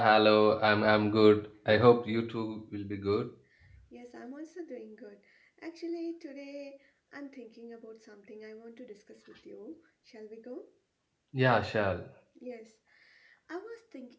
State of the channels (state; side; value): identical; both; correlation 1.00